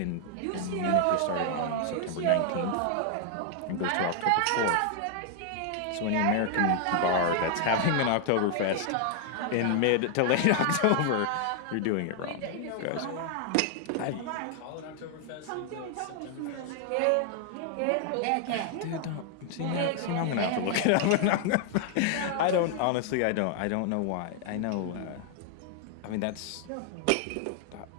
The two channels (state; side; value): different; both; correlation 0.00